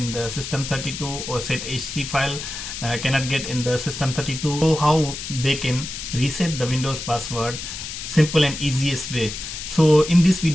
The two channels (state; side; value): noise; left; hiss, 8 dB below the sound